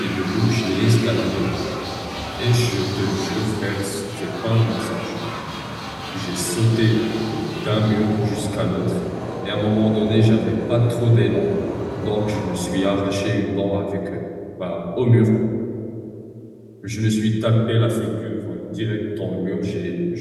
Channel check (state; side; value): identical; both; correlation 1.00